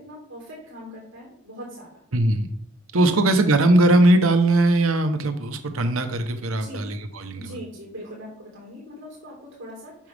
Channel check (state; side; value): normal; both; correlation 0.67